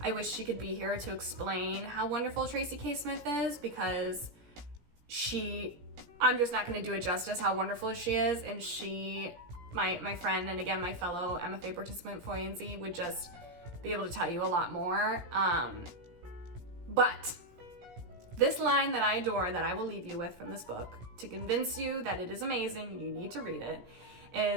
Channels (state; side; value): late; left; 17 ms